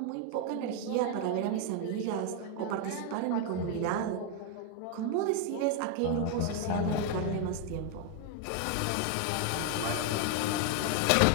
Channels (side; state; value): both; different; correlation 0.01